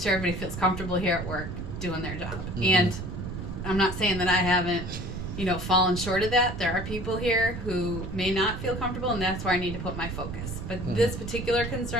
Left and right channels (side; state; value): right; noise; rumble, 7 dB below the sound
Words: everybody feels comfortable here at work doing their job. Mhm. And I'm not saying that I haven't fallen short of that. There are people here who may not feel comfortable, and that's where I need to put my focus. But Mhm. this particular